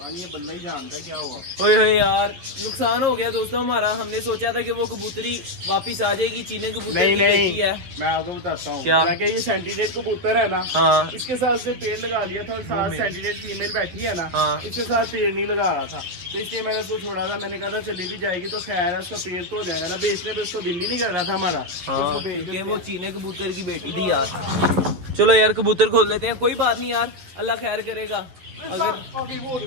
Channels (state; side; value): late; left; 11 ms